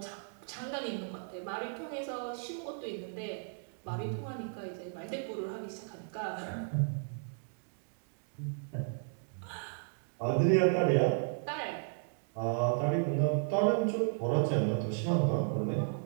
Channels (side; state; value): left; silent; digital silence